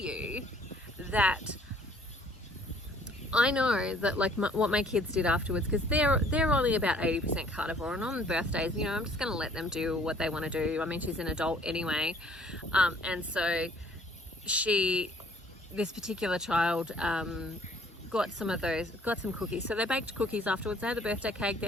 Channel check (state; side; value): normal; both; correlation 0.58